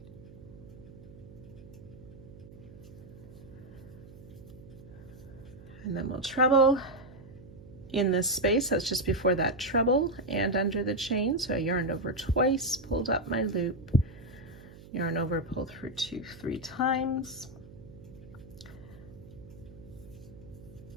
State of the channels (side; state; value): right; noise; hum, 18 dB below the sound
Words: And then we'll treble in this space, that's just before that treble and under the chain. So I yarned over twice, pulled up my loop, yarn over, pull through 2-3 times.